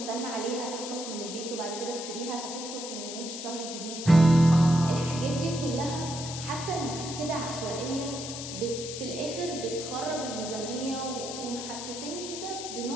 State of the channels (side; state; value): left; noise; hiss, 8 dB below the sound